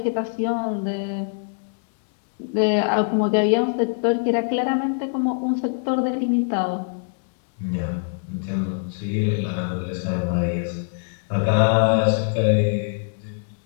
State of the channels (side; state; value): right; silent; digital silence